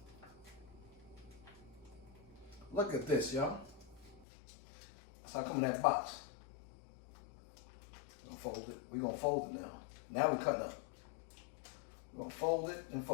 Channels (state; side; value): drops out; right; at 4.2 s